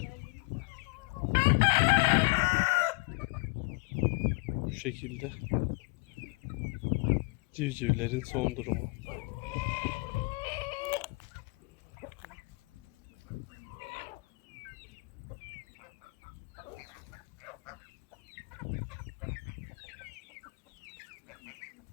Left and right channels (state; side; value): quieter; right; 29.4 dB